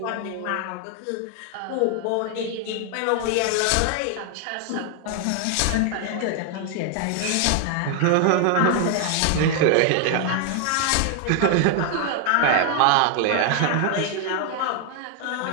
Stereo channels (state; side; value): different; both; correlation 0.00